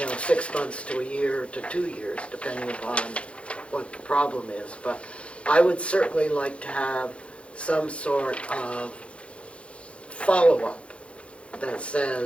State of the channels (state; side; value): late; right; 0.060 ms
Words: 6 months to a year to 2 years, depending upon what the problem is. But I would certainly like to have some sort of follow-up that